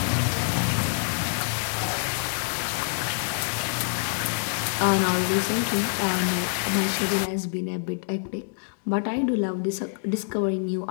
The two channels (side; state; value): right; silent; digital silence